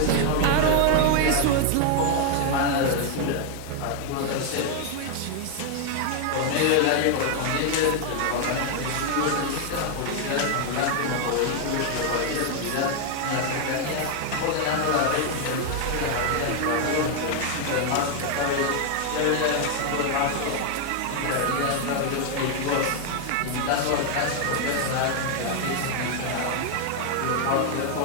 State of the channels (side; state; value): both; different; correlation 0.00